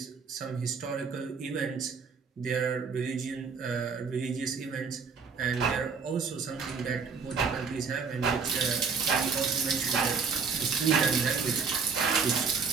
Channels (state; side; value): quieter; left; 5.4 dB